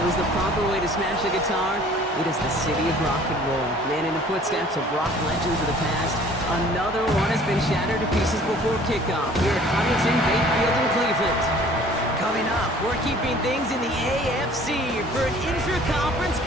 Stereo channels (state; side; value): normal; both; correlation 0.52